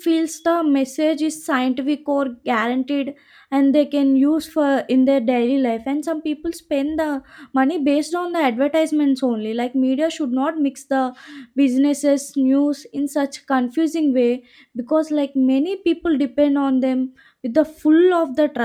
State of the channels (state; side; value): identical; both; correlation 1.00